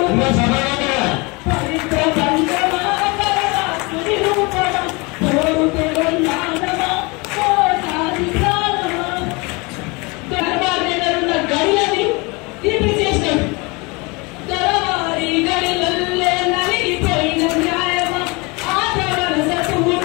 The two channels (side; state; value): right; quieter; 27.2 dB